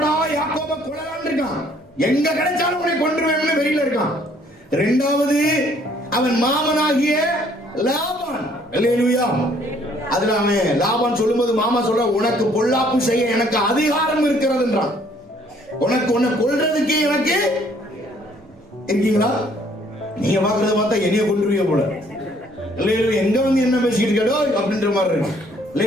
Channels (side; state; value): both; normal; correlation 0.62